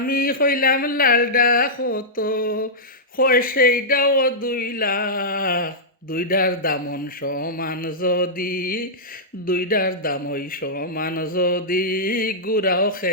কইলাম লালডা কত। কয় সেইটাও 2 লাখ। দুইটার দামন সমান যদি, দুইটার দাম ওই সমান যদি, গুড়াও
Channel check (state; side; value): normal; both; correlation -0.12